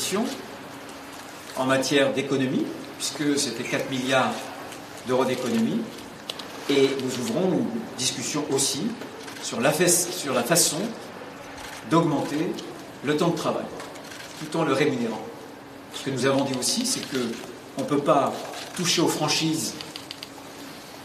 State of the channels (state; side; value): identical; both; correlation 1.00